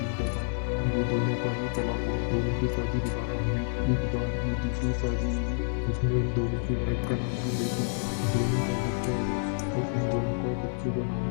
था, जो दोनों का ही तलाक हुआ। दोनों की शादी दोबारा हुई। इस बार जो दूसरी शादी हुई उसमें इन दोनों की वाइफ का नाम भी बेटी था। दोनों का बच्चा हुआ और उन दोनों का बच्चे का नाम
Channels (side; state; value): right; silent; 59 dB below the other